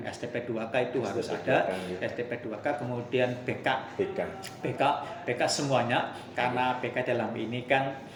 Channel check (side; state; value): both; identical; correlation 1.00